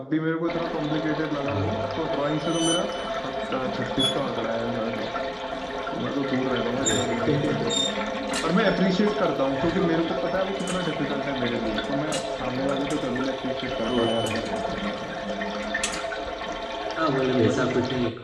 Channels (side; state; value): both; identical; correlation 1.00